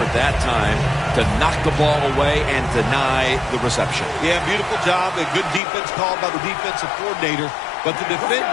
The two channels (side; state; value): right; drops out; at 5.6 s